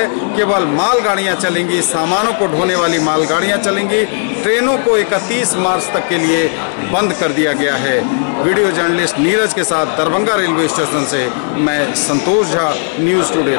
केवल मालगाड़ियां चलेंगी, सामानों को ढोने वाली मालगाड़ियां चलेंगी। ट्रेनों को 31 मार्च तक के लिए बंद कर दिया गया है। वीडियो जर्नलिस्ट नीरज के साथ दरभंगा रेलवे स्टेशन से मैं संतोष झा, न्यूज़ टुडे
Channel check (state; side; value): silent; right; digital silence